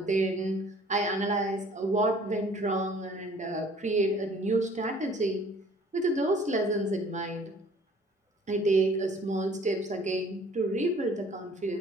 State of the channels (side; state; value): both; normal; correlation 0.54